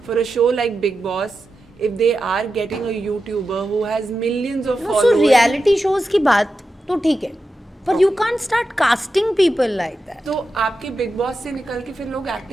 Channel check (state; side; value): normal; both; correlation 0.90